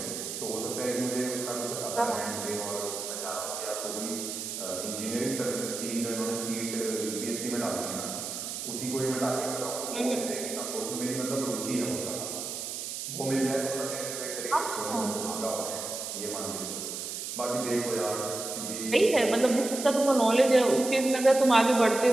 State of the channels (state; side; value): noise; right; hiss, 6 dB below the sound